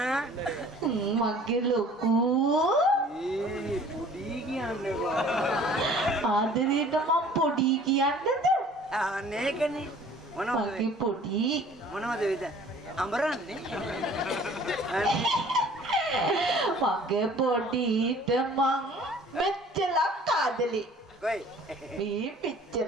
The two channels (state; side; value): normal; both; correlation 0.51